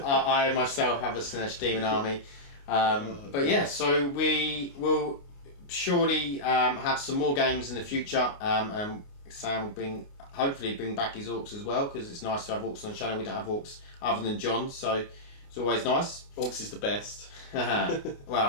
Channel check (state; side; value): late; right; 29 ms